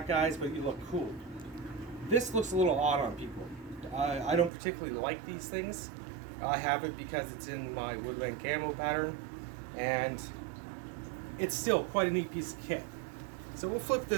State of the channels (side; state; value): left; drops out; at 4.5 s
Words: guys, but you look cool. This looks a little odd on people. I don't particularly like these things. I have it because it's in my woodland camo pattern, and it's still quite a neat piece of kit. So we'll flip